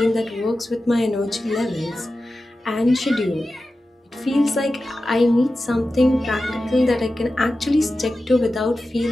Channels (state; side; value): normal; both; correlation 0.93